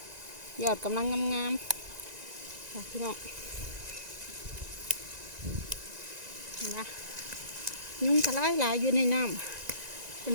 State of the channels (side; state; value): left; late; 1.9 ms